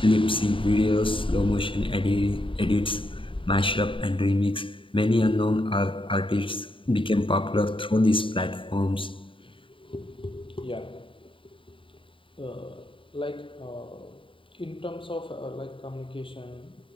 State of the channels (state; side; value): late; right; 0.25 ms